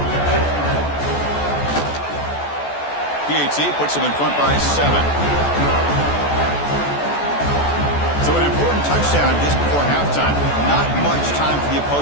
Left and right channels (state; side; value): late; right; 14 ms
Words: PAT puts him in front by 7. So an important touchdown just before halftime. Not much time for the